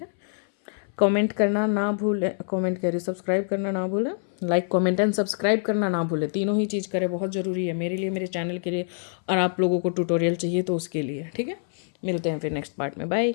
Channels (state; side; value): silent; right; 59 dB below the other